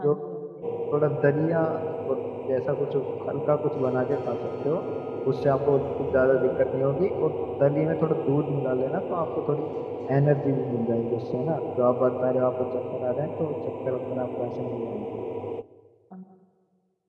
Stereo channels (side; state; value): both; identical; correlation 1.00